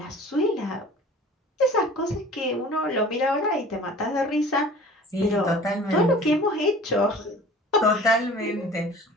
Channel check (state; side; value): normal; both; correlation 0.44